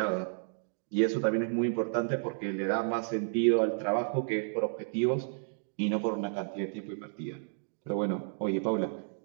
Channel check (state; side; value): silent; left; digital silence